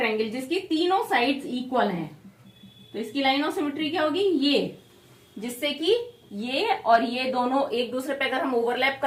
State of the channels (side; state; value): both; identical; correlation 1.00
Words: जिसकी तीनों साइड्स इक्वल हैं, तो इसकी लाइन ऑफ सिमेट्री क्या होगी, ये, जिससे कि ये और ये दोनों एक दूसरे पे अगर हम ओवरलैप